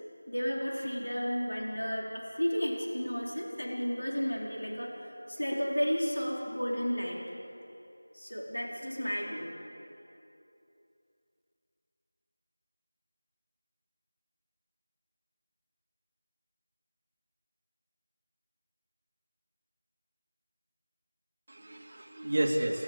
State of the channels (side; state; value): both; inverted; correlation -0.99